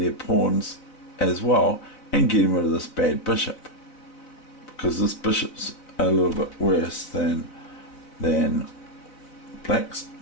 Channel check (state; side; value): late; right; 4.0 ms